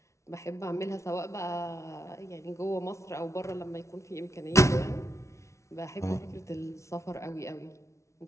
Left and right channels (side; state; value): right; late; 0.14 ms